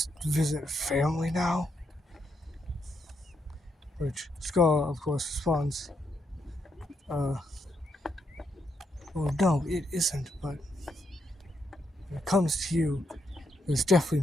visit family now? Which Scar, of course, responds, well, no, it isn't, but when it comes to you, there's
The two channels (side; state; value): both; normal; correlation 0.79